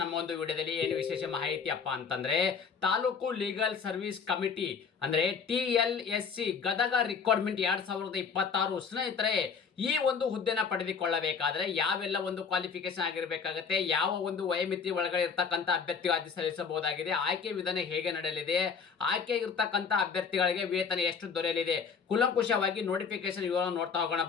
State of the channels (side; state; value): right; quieter; 5.9 dB